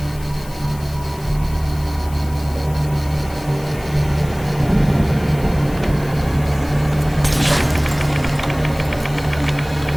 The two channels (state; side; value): noise; left; hiss, 20 dB below the sound